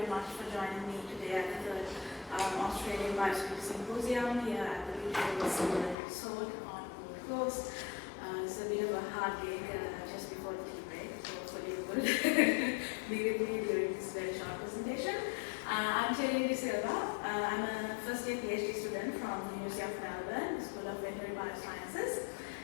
much for joining me today at the Australian Biosecurity Symposium here at the Beach Resort on Gold Coast. It's a bit of a hard day just before the tea break, so hopefully you will be with me during this very short presentation. I'm Terry Silva. I'm a first year PhD student from the University of Melbourne, School of Veterinary Biosciences,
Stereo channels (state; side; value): drops out; right; at 6.0 s